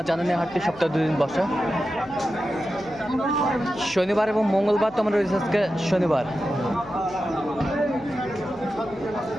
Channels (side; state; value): left; noise; hum, 21 dB below the sound